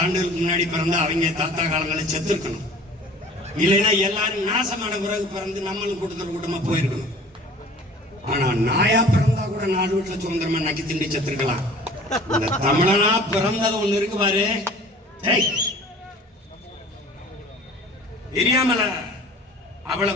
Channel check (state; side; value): normal; both; correlation 0.46